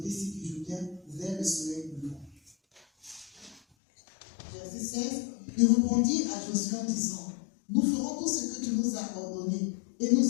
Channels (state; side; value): drops out; right; at 3.6 s